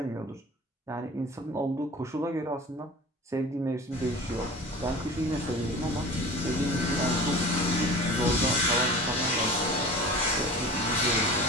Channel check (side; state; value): both; normal; correlation 0.38